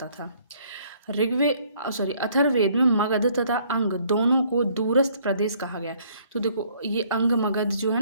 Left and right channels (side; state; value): both; inverted; correlation -0.62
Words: था। अथर्ववेद में मगध तथा अंग दोनों को दूरस्थ प्रदेश कहा गया। तो देखो ये अंग मगध जो है